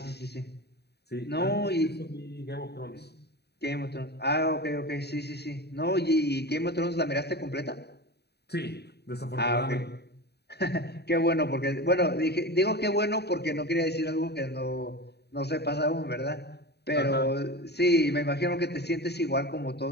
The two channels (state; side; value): late; right; 0.48 ms